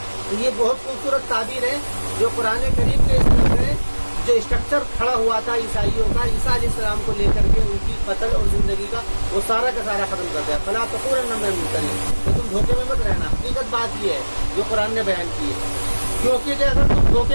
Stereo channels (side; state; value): both; inverted; correlation -1.00